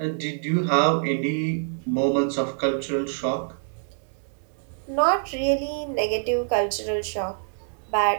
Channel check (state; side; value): silent; left; digital silence